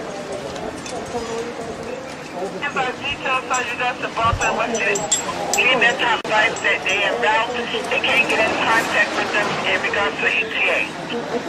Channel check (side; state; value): both; identical; correlation 1.00